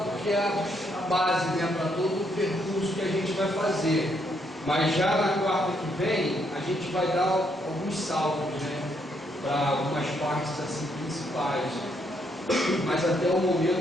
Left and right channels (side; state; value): both; normal; correlation 0.74